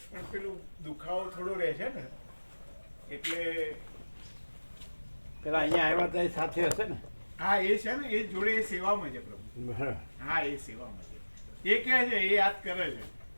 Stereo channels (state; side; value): inverted; both; correlation -1.00